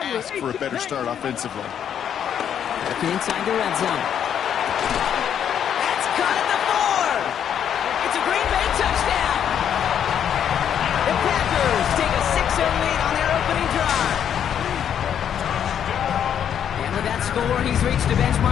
for a better start offensively. Looking inside the red zone. That's caught at the 4. It's a Green Bay touchdown. The Packers take a 6-0 lead on their opening drive. And with that score, he's reached a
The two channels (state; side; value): quieter; right; 9.0 dB